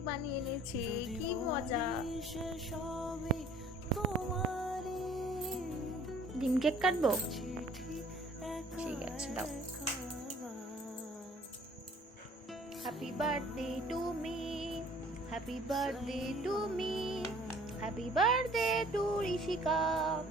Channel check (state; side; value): normal; both; correlation 0.54